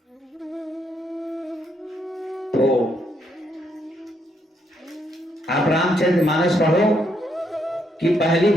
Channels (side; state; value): both; normal; correlation 0.75